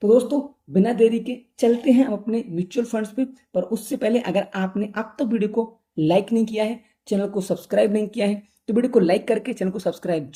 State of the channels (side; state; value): both; identical; correlation 1.00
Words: तो दोस्तों बिना देरी के चलते हैं हम अपने म्यूचुअल फंड्स पे। पर उससे पहले अगर आपने अब तक वीडियो को लाइक नहीं किया है, चैनल को सब्सक्राइब नहीं किया है, तो वीडियो को लाइक करके चैनल को सब्सक्राइब